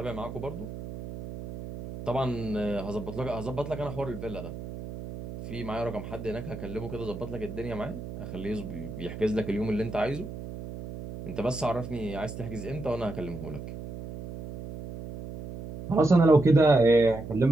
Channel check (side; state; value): right; noise; hum, 10 dB below the sound